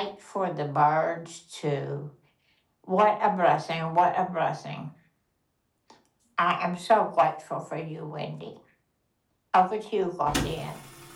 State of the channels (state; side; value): identical; both; correlation 1.00